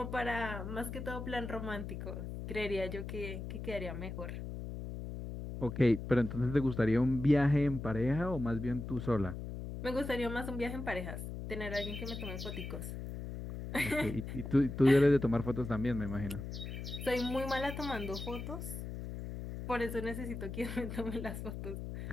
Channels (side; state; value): left; noise; hum, 7 dB below the sound